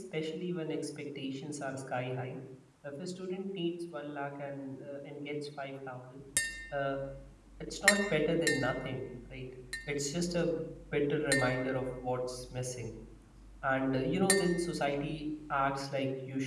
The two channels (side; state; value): both; identical; correlation 1.00